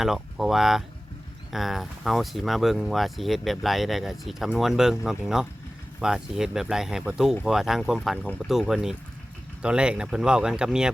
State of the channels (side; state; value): both; normal; correlation 0.97